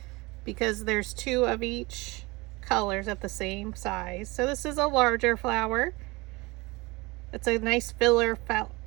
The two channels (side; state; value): left; quieter; 23.8 dB